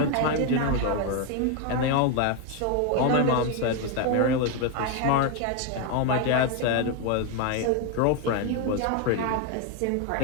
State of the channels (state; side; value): different; both; correlation 0.01